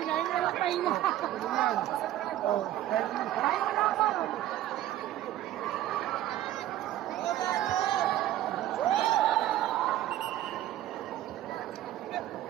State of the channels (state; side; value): quieter; left; 13.4 dB